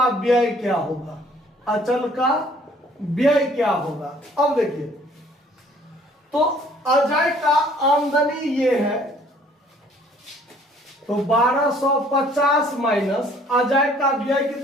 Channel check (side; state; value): both; normal; correlation 0.58